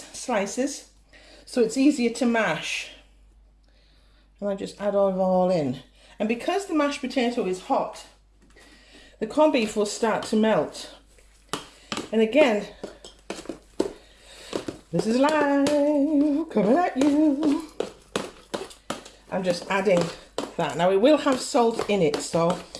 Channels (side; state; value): both; identical; correlation 1.00